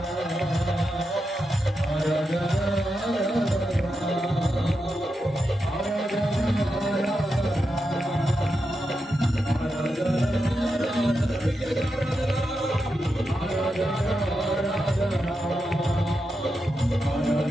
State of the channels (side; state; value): both; normal; correlation 0.87